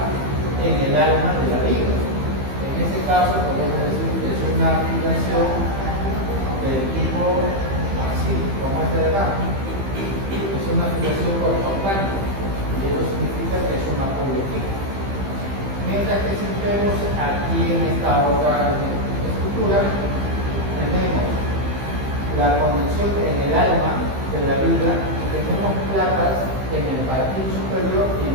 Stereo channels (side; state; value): left; late; 15 ms